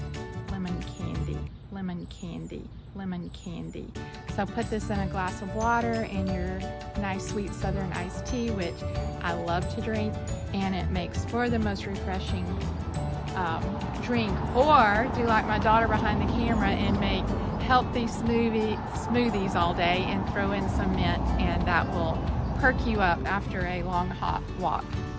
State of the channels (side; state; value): both; identical; correlation 1.00